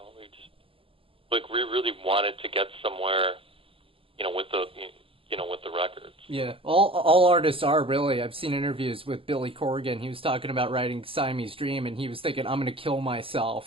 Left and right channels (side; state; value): left; late; 0.26 ms